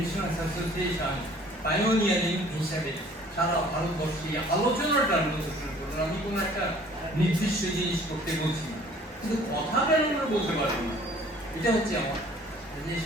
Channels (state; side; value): normal; both; correlation 0.54